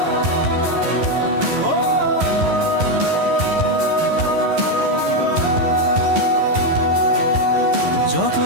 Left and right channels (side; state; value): left; late; 11 ms